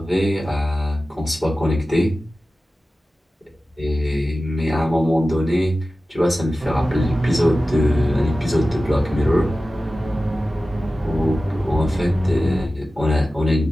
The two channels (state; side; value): normal; both; correlation 0.95